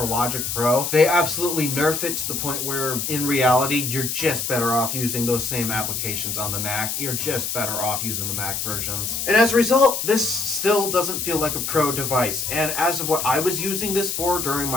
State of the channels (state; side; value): noise; left; hiss, 3 dB below the sound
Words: Logic Pro, they absolutely nerf it to the point where, in reality, you're just better off using those same applications on the Mac. You're just better off using the Mac versions. And as a result, this still doesn't feel like a pro device. And as of what I was using this for during